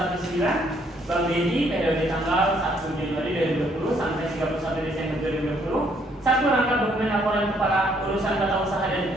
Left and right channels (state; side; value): normal; both; correlation 0.67